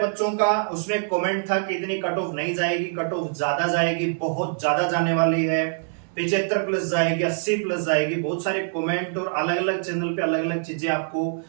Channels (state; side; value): silent; left; digital silence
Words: का उसमें कमेंट था कि इतनी कट ऑफ नहीं जाएगी, कट ऑफ ज्यादा जाएगी, बहुत ज्यादा जाने वाली है, 75 प्लस जाएगी, 80 प्लस जाएगी। बहुत सारे कमेंट और अलग अलग चैनल पे अलग अलग चीजें आपको